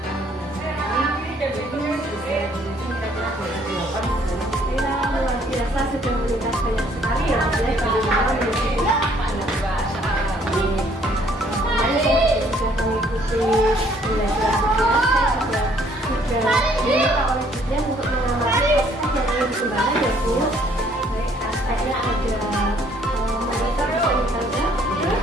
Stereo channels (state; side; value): normal; both; correlation 0.63